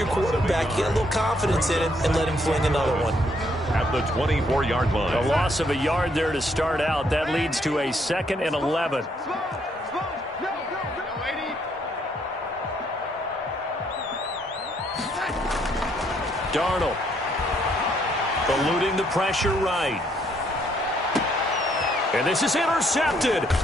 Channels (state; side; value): normal; both; correlation 0.70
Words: quarterback, you get a little confidence in him, and let him fling another one. At the 24-yard line. A loss of a yard there to start out. That leads to a 2nd and 11. Darnold. Eluding the pressure right. And this is intercepted.